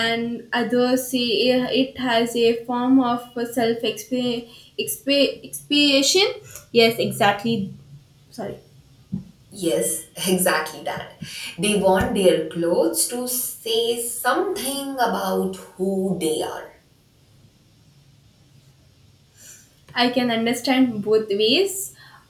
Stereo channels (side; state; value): both; identical; correlation 1.00